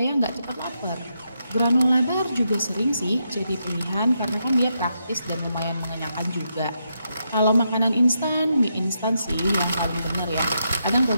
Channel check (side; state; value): both; inverted; correlation -0.82